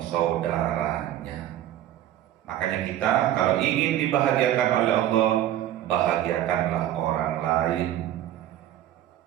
Makanya kita kalau ingin dibahagiakan oleh Allah, bahagiakanlah orang lain.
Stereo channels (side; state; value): left; quieter; 12.3 dB